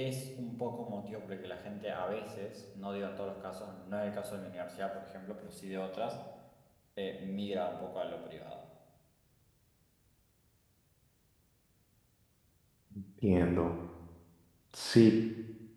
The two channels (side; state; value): both; identical; correlation 1.00